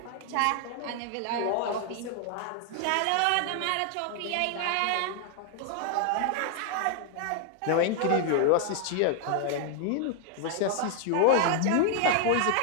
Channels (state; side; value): different; both; correlation 0.00